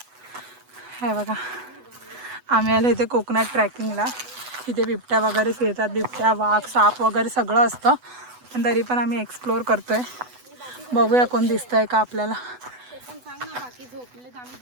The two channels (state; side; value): late; left; 8.0 ms